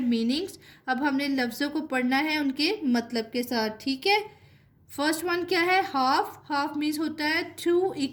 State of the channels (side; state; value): both; identical; correlation 1.00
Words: अब हमने लफ्ज़ों को पढ़ना है उनके मतलब के साथ, ठीक है। फर्स्ट वन क्या है, हाफ, हाफ मीन्स होता है टू